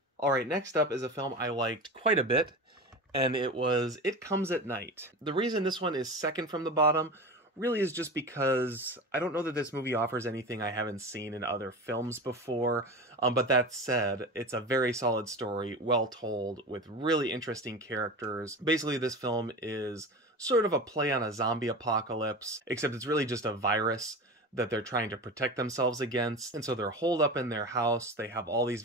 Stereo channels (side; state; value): both; normal; correlation 0.29